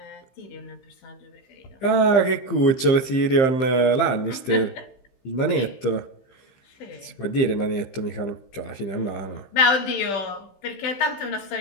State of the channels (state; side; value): late; right; 15 ms